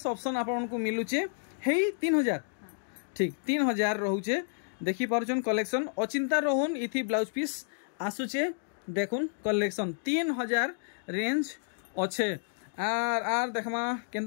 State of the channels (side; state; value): right; silent; digital silence